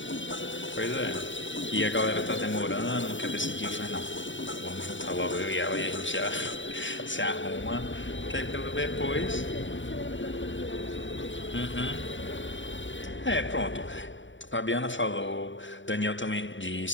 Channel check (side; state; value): right; late; 0.55 ms